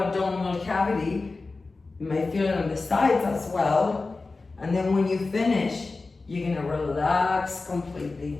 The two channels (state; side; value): quieter; right; 3.7 dB